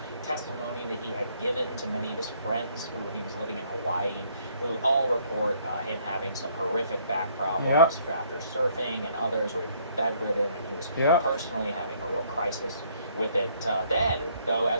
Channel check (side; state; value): both; inverted; correlation -0.64